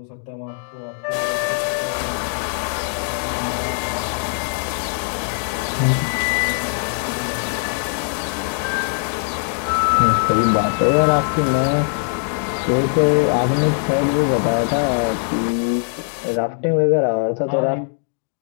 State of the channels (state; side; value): silent; right; digital silence